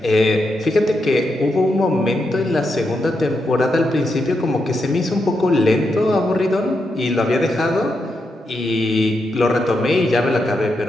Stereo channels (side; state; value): both; normal; correlation 0.84